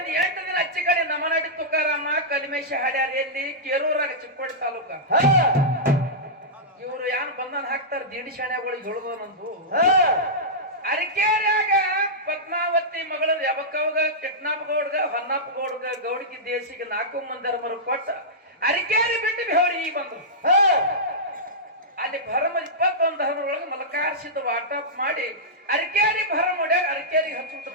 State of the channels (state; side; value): normal; both; correlation -0.13